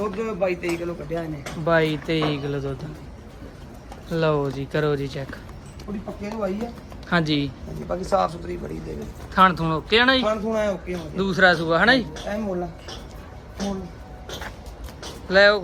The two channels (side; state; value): both; identical; correlation 1.00